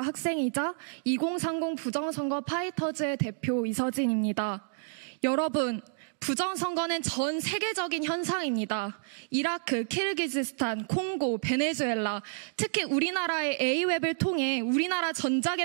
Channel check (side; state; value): left; silent; digital silence